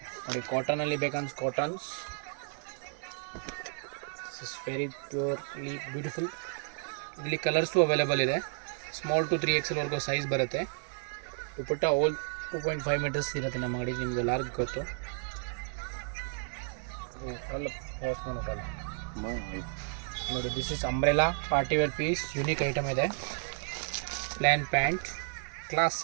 ನೋಡಿ, ಕಾಟನಲ್ಲಿ ಬೇಕಂದ್ರೆ cottons is very purely beautiful. ಇಲ್ಲಿ ಕಲರ್ಸು ಅವೈಲೇಬಲ್ ಇದೆ. ಸ್ಮಾಲ್ ಟು 3XL ವರೆಗೂ ಸೈಜ್ ಬರುತ್ತೆ. ದುಪಟ್ಟ ಆಲ್ 2.5 ಮೀಟರ್ಸ್ ಇರುತ್ತೆ ನಮ್ಮ ಅಂಗಡಿ. ನಿಮ್ಗೆ ಎಲ್ಲರಿಗೂ ಗೊತ್ತು. ನೋಡಿ, this is umbrella party wear piece. Unique item ಇದೆ. ಪ್ಲ್ಯಾನ್ ಪ್ಯಾಂಟ್, ಕ್ಲಾಸ್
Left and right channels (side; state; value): left; silent; 56 dB below the other